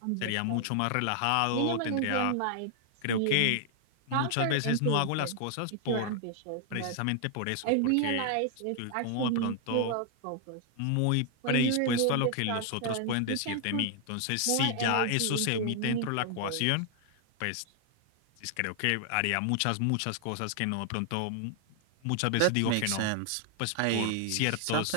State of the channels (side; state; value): both; different; correlation 0.00